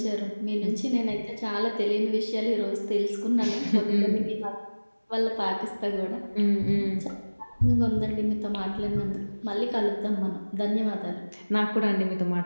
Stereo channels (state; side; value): inverted; both; correlation -1.00